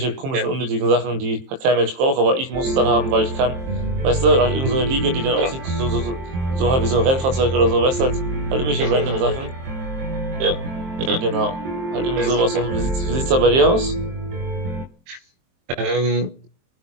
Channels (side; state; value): left; late; 23 ms